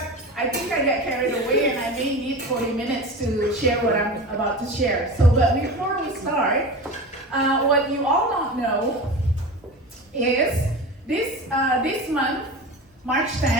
I think I get carried away and I may need 40 minutes to share what I'm about to share. So, but before we start, what you all don't know is this month, March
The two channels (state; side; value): normal; both; correlation 0.30